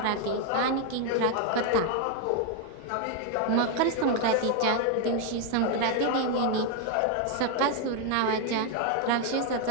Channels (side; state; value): both; different; correlation 0.01